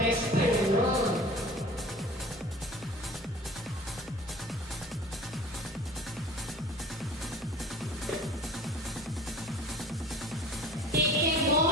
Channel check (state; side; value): normal; both; correlation 0.43